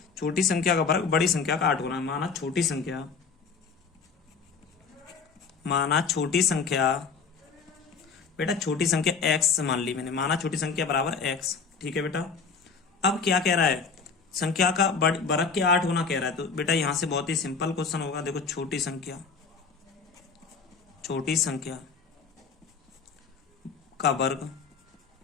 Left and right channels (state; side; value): quieter; right; 5.2 dB